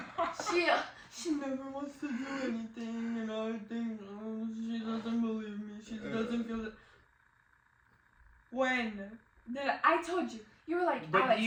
she never wants to do anything, and I think she doesn't believe me. She doesn't feel it. When did I told you? You were like, but Alex,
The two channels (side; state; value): both; identical; correlation 1.00